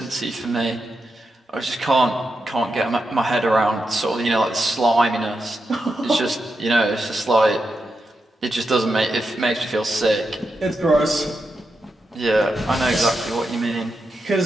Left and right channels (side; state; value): both; normal; correlation 0.87